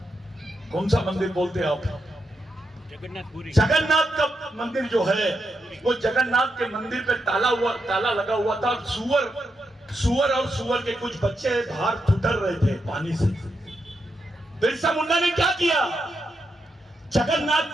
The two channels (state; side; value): normal; both; correlation 0.84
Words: कौन सा मंदिर बोलते हैं आप? जगन्नाथ का मंदिर जो है, वो जगन्नाथ के मंदिर पे ताला लगा हुआ था। सुअर और सुअर के कुछ बच्चे बाहर ठुठर रहे थे पानी से। बिरसा मुंडा ने क्या किया? जगन्नाथ